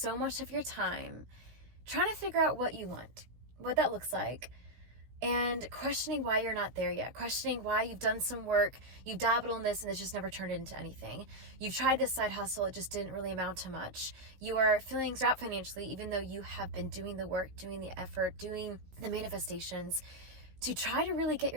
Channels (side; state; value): left; late; 16 ms